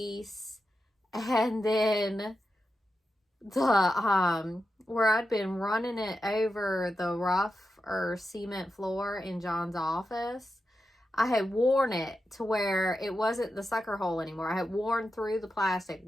and then the where I'd been running it over the rough or cement floor in John's office, I had worn it to where it wasn't the sucker hole anymore. I had worn through the plastic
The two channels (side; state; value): both; normal; correlation 0.89